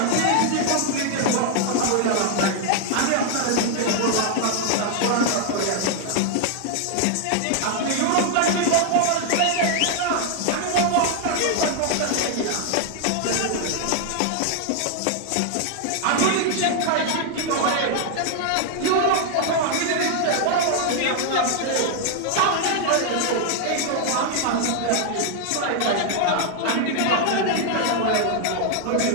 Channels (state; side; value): different; both; correlation 0.00